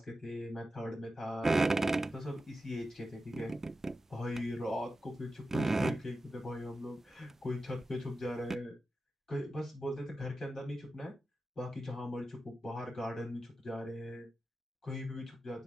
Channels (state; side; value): normal; both; correlation 0.91